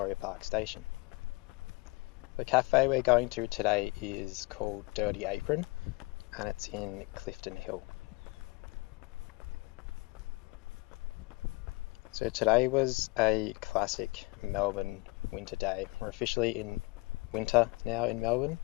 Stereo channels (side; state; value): right; quieter; 25.5 dB